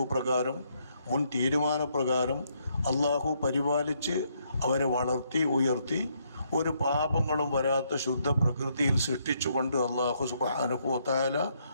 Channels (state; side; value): inverted; both; correlation -0.73